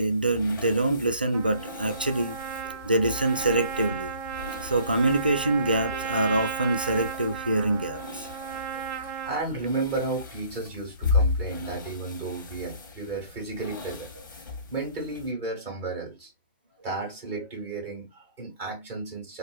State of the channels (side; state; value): both; inverted; correlation -0.57